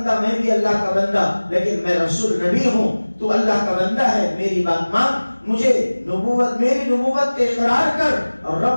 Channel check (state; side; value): inverted; both; correlation -1.00